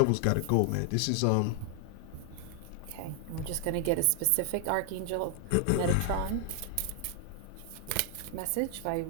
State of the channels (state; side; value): different; both; correlation 0.00